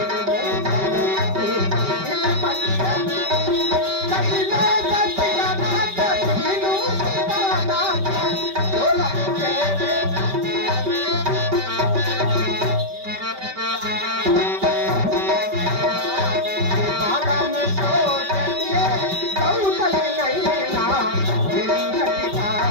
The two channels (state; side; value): late; left; 5.1 ms